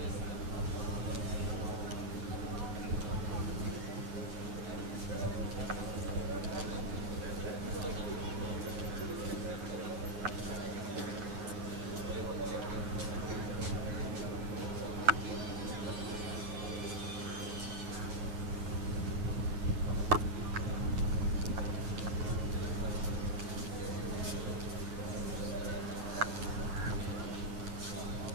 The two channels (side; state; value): left; late; 9.2 ms